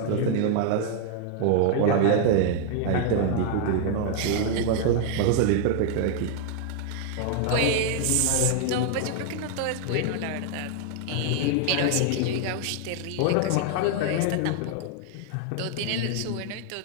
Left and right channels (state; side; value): different; both; correlation 0.00